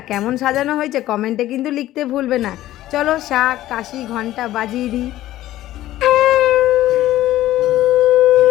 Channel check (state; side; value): quieter; right; 14.5 dB